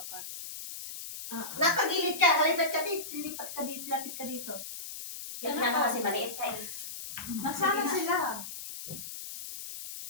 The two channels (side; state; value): left; noise; hiss, 9 dB below the sound